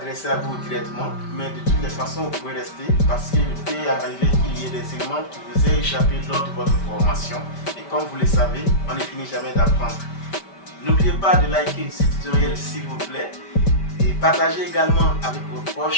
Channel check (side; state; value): right; late; 5.1 ms